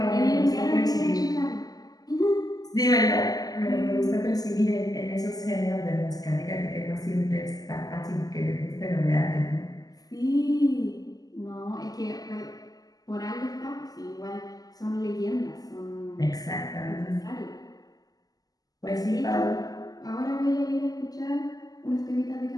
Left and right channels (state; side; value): late; right; 0.18 ms